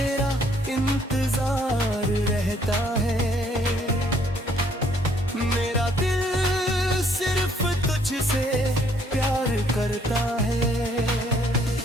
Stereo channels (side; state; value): both; normal; correlation 0.65